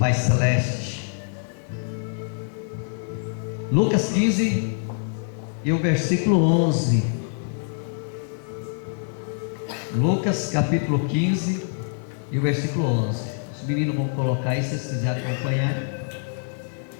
Celeste. Lucas 15 e o versículo 11. Lucas capítulo 15 e o versículo 11. Os meninos vão colocar aí, se vocês quiserem acompanhar.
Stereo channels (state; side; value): silent; right; 62 dB below the other